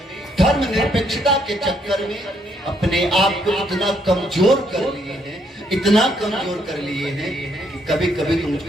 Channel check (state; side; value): normal; both; correlation 0.72